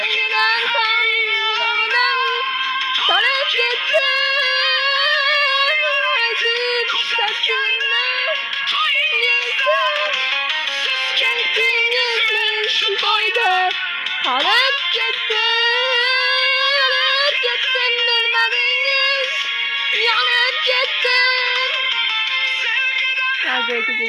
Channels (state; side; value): identical; both; correlation 1.00